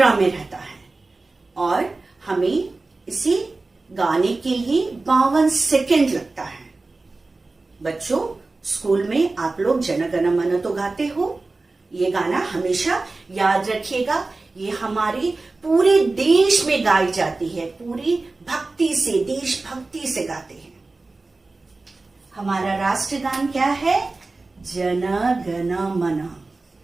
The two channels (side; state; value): left; quieter; 3.4 dB